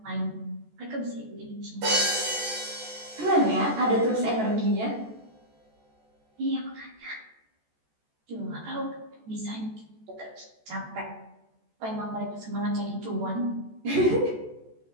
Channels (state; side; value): late; left; 14 ms